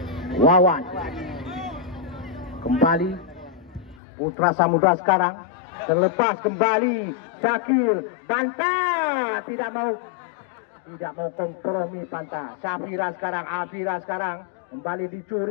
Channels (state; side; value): drops out; right; at 4.0 s